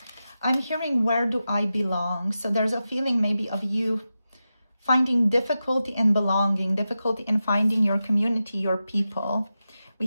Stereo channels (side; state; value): both; inverted; correlation -0.91